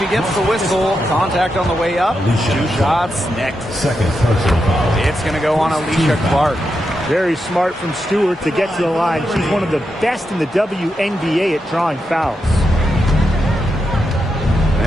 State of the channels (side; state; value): both; normal; correlation 0.86